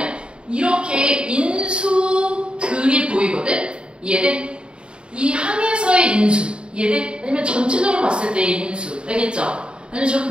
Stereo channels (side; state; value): left; late; 0.053 ms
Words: 이렇게 인수들이 보이거든? 이해돼? 이 항에서의 인수. 이해돼? 아니면 전체적으로 봤을 때의 인수. 알겠죠? 아니면 저렇게